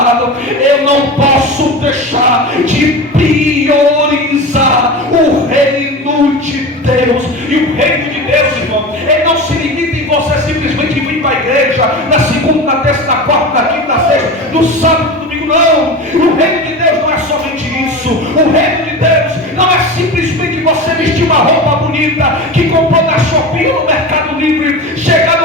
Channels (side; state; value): both; normal; correlation 0.28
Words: Eu não posso deixar de priorizar o reino de Deus. E o reino de Deus, irmão, ele não se limita em você simplesmente vir para a igreja na segunda, na terça, na quarta, na quinta, na sexta, no sábado, no domingo. Não, o reino de Deus não é somente isso. O reino de Deus não é simplesmente você vestir uma roupa bonita que comprou na Shopee ou no Mercado Livre,